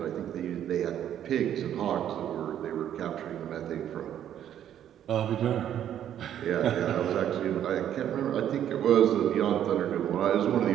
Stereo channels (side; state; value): left; quieter; 10.4 dB